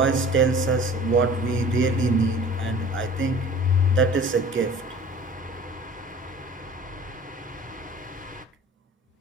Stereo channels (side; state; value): both; normal; correlation 0.45